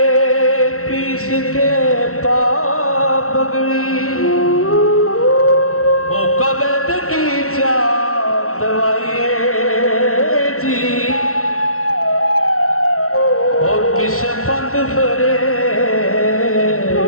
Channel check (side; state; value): right; late; 0.63 ms